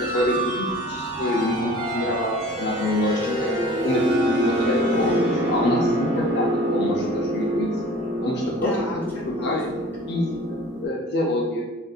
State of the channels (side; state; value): both; normal; correlation 0.45